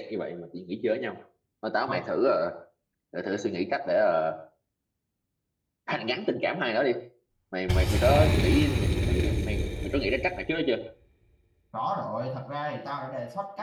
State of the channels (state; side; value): identical; both; correlation 1.00